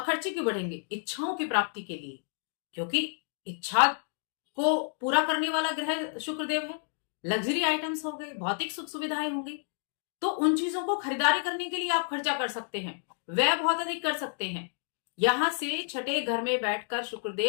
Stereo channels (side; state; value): right; silent; digital silence